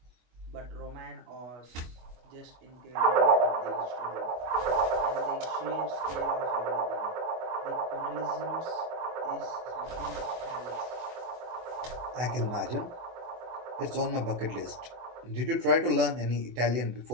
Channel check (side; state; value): left; late; 24 ms